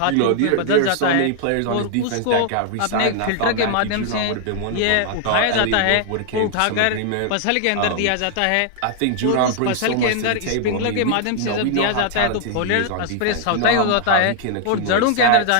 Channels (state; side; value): different; both; correlation 0.00